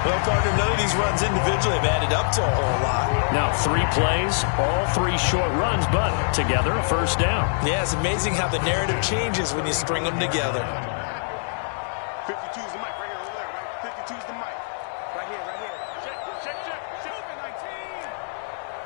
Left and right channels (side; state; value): right; silent; digital silence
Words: Well, partner, none of these runs individually have added up to a whole lot. Now, 3 plays, all 3 short runs, but together a 1st down. Yeah, it's amazing how the narrative changes when you string them together. 52's the mic right here, over there, right? 52's the mic. Right here, right here. Check.